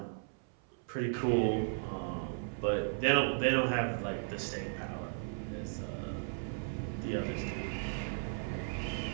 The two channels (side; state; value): left; silent; 54 dB below the other